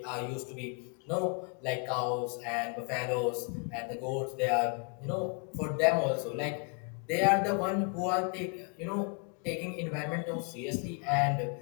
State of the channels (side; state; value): right; quieter; 37.0 dB